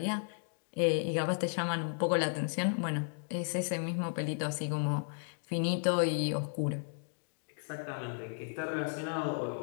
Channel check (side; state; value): right; silent; digital silence